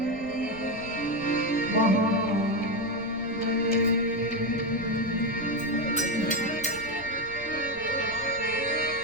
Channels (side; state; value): right; noise; rumble, 20 dB below the sound